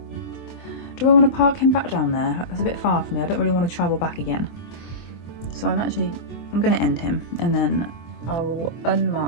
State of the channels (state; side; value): late; right; 24 ms